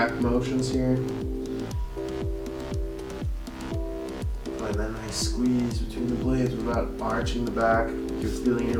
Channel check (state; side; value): identical; both; correlation 1.00